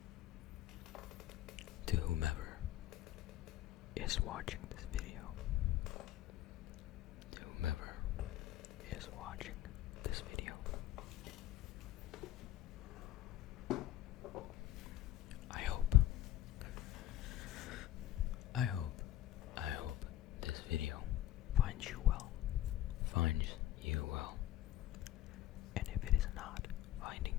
To whomever is watching this video. To whomever is watching this video. I hope this video finds you well. Finds you well. And if it is not finding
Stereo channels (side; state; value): right; quieter; 13.6 dB